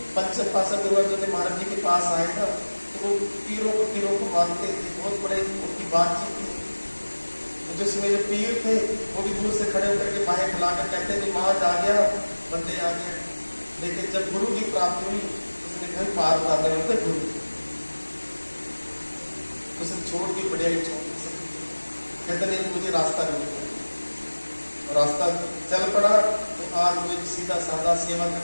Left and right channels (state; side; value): inverted; both; correlation -1.00